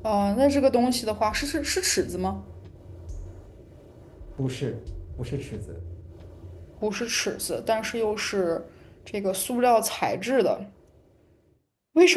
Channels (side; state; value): both; identical; correlation 1.00